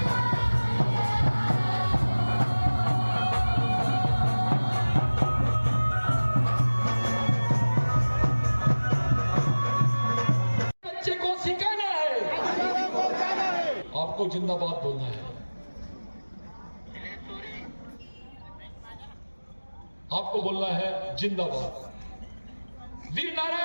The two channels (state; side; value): inverted; both; correlation -1.00